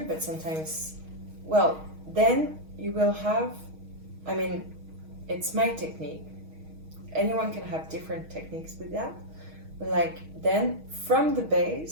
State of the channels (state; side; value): late; left; 6.3 ms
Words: but sometimes, well, then you will have, it's my technique. anyone can have different techniques with that. But like then from the